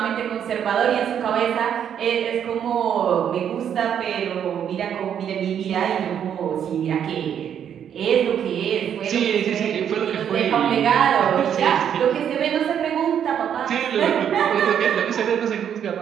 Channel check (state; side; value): quieter; left; 8.9 dB